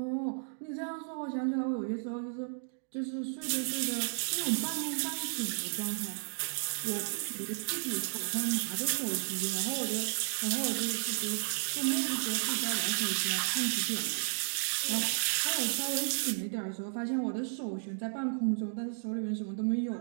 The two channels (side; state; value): left; silent; digital silence